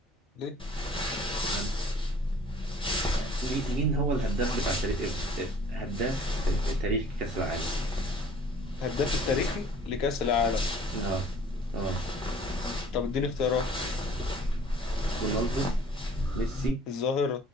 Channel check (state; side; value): normal; both; correlation 0.53